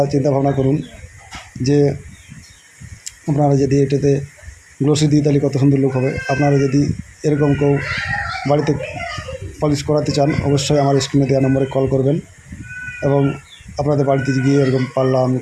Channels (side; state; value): both; identical; correlation 1.00